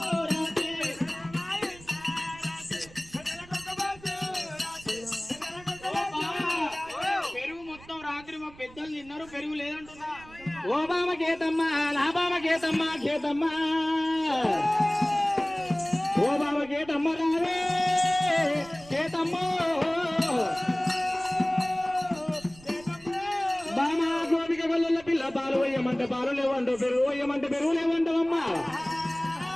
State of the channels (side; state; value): right; noise; rumble, 22 dB below the sound